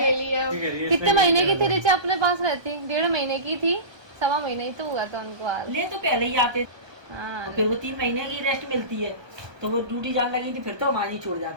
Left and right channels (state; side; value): late; left; 1.2 ms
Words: लिया। कितने महीने की थी रिचा अपने पास रहती? 1.5 महीने की थी, 1.25 महीने ही तो हुआ था उनको हाल। ले तो पहले ही आते हाँ, और फिर वो 3 महीने की रेस्ट मिलती है, तो वो ड्यूटी जाने लगी थी, फिर तो हमारी छोड़